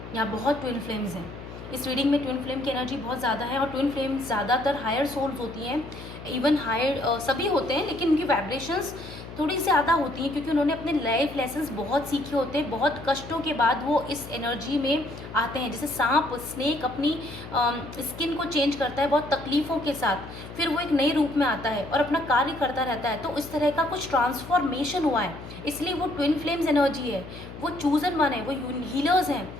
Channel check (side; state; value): left; noise; hum, 13 dB below the sound